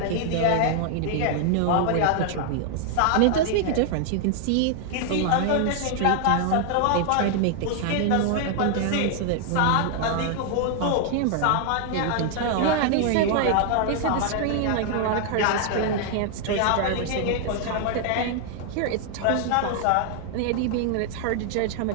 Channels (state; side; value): different; both; correlation 0.00